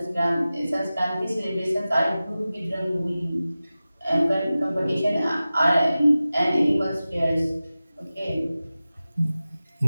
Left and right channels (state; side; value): inverted; both; correlation -0.95